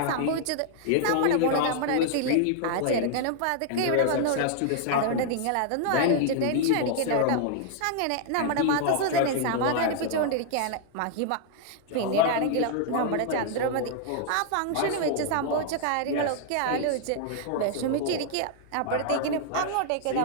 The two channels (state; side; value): different; both; correlation -0.01